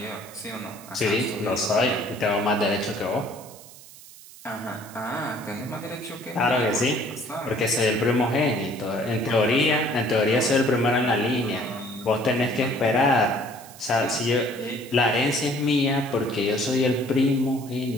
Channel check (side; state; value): right; noise; hiss, 19 dB below the sound